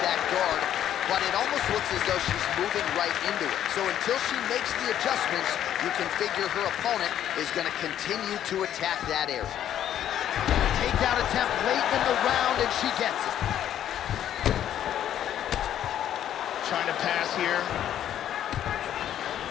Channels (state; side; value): quieter; right; 10.8 dB